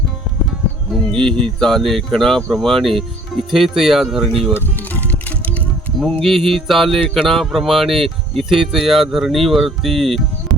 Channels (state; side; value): normal; both; correlation 0.55